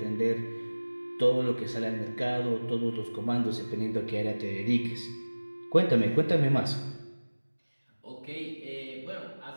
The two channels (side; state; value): both; inverted; correlation -1.00